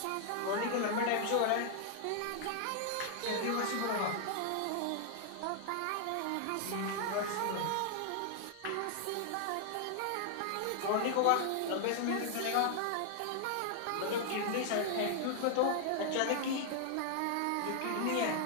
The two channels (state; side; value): different; both; correlation 0.00